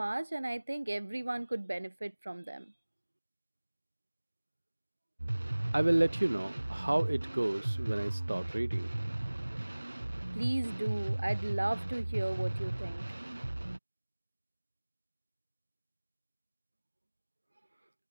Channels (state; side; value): inverted; both; correlation -1.00